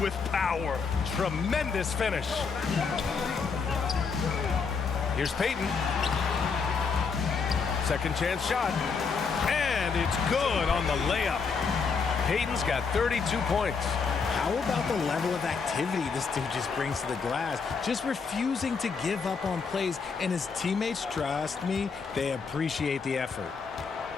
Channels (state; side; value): quieter; right; 5.3 dB